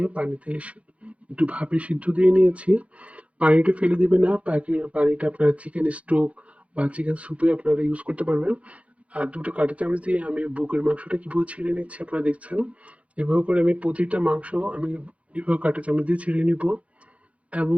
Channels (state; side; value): late; left; 0.064 ms